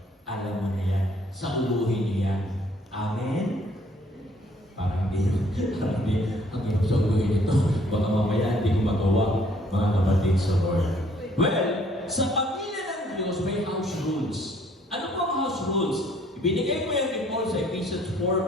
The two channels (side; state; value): both; normal; correlation 0.62